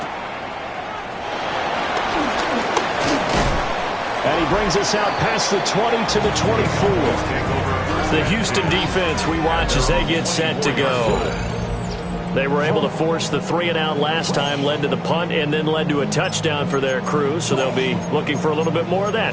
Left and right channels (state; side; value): identical; both; correlation 1.00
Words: And he brings us out past the 20 to the 24. The Houston defense we watch as they get set to go. They were able to force the 3 and out last time, led to the punt, and then led to a touchdown for their crew. So they'll be looking for a little bit more of